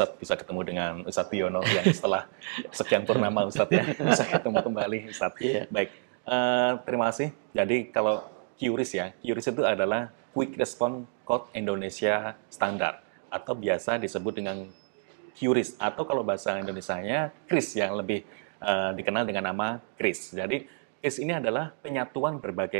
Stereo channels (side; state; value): left; silent; 59 dB below the other